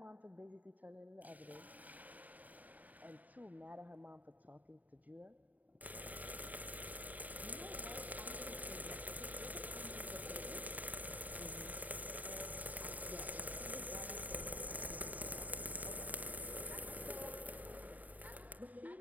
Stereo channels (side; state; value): left; late; 0.077 ms